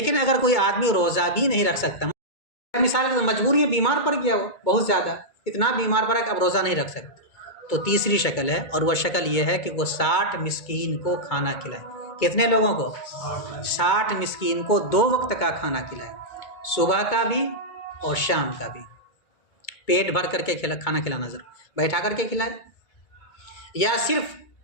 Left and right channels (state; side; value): late; right; 2.2 ms